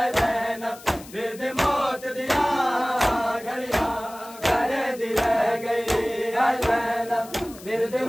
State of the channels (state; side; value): noise; left; hiss, 19 dB below the sound